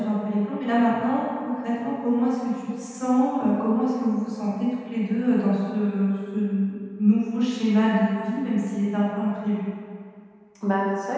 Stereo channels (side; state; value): both; identical; correlation 1.00